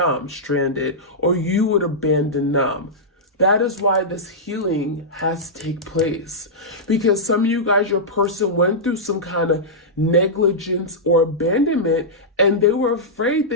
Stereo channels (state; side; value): normal; both; correlation -0.12